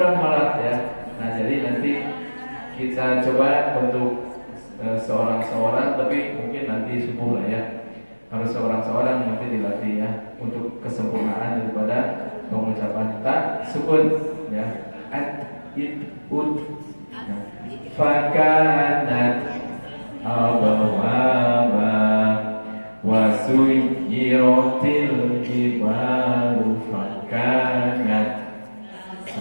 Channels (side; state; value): both; inverted; correlation -1.00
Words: malah ya. Nah, jadi nanti kita coba untuk seorang-seorang, tapi mungkin nanti subuh lah ya. Harus seorang-seorang nanti dilatih ya, untuk kesempurnaan daripada pengucapan tak sukun ya. Fakanat abawaba wasuyiratil jibalu fakanat